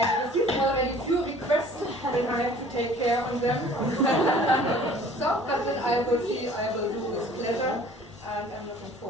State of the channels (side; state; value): both; normal; correlation 0.51